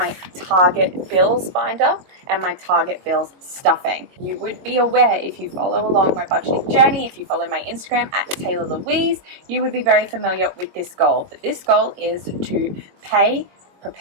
target bills binder and my target bills stuffing. You would be aware, if you follow along my budgeting journey, if you follow my Instagram at Taylah Louise, you would be very familiar with this goal. But this goal is to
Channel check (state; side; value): late; left; 22 ms